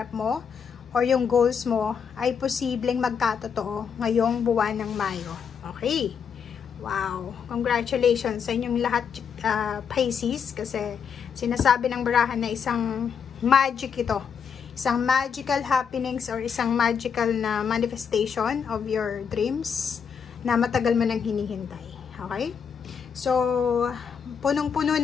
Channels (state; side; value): quieter; right; 6.9 dB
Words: mo or yung goals mo ay posibleng magkatotoo ngayong buwan ng Mayo. Okay. Wow. Congratulations sa inyong lahat Pisces kasi sinasabi ng barahan na isang magic ito. Isang magical happenings or isang magical na manifestation of your dreams na matagal mo nang hinihintay. Okay? So, punong-puno